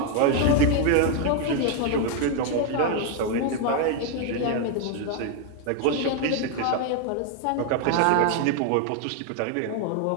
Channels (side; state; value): both; different; correlation 0.01